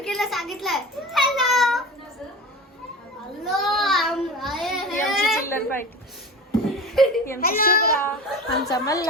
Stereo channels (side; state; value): both; normal; correlation 0.33